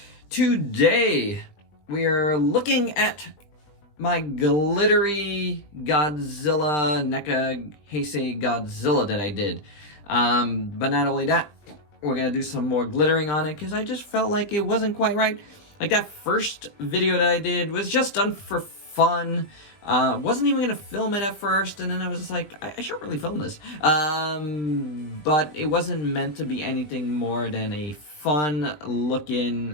Today, we are looking at my glittery Godzilla, NECA Heisei Godzilla that I did. But not only that, we're gonna do some more glittering on it, because I just felt like it wasn't quite right. Like, that first video that I did was just done for fun. Wasn't even gonna film it at first, and then I was just like, I should really film this. But it wasn't meant to be anything more than a fun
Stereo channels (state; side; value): late; right; 20 ms